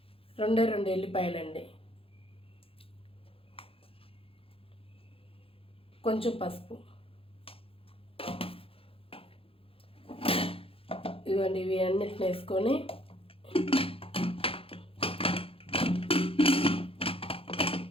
రెండు ఎల్లిపాయలండి, కొంచెం పసుపు, ఇదిగోండి ఇవి అన్నిటిని వేసుకొని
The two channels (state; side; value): late; right; 0.27 ms